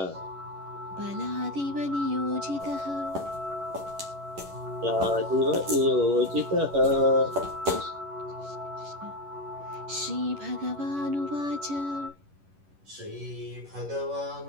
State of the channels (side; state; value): left; late; 11 ms